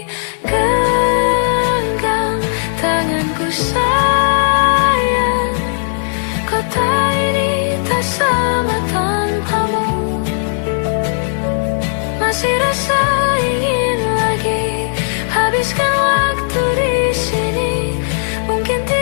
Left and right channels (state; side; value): silent; right; 69 dB below the other